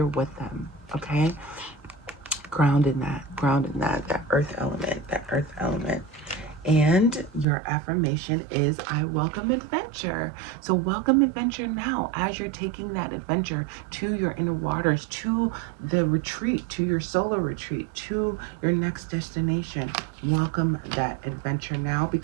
with them, okay? Ground in that earth element. And your affirmation is, I welcome adventure. So welcome adventure now as you're taking that adventure to your inner waters, to the retreat, to your solo retreat, to your next destination. Welcome that adventure now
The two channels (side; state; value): left; drops out; at 7.5 s